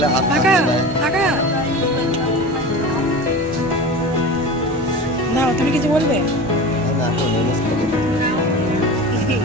হাত তাকা তাকা। না তুমি কিছু বলবে না?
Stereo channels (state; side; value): normal; both; correlation 0.32